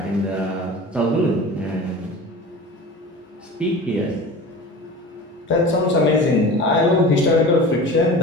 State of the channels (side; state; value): both; normal; correlation 0.36